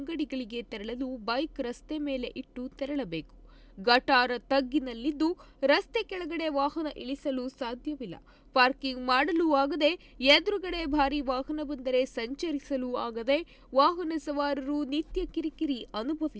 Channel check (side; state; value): both; identical; correlation 1.00